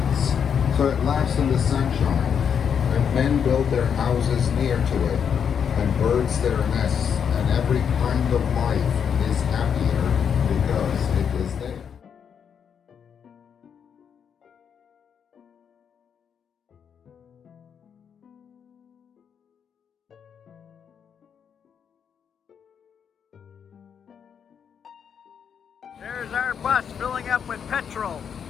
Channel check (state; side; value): quieter; right; 7.5 dB